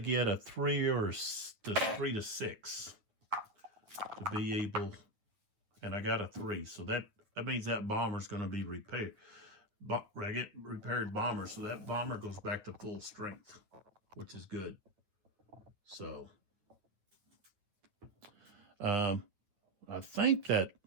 a 3 or 3 to 6 to be able, and I got a 3. So that That means that bomber's going to be repaired. Repaired bomber, so that bomber goes back to full strength, which is good. So, I think that,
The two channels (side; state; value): left; late; 9.2 ms